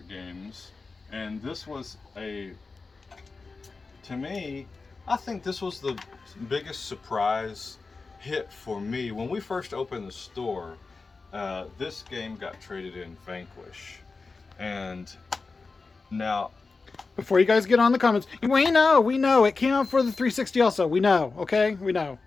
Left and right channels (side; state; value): right; quieter; 4.1 dB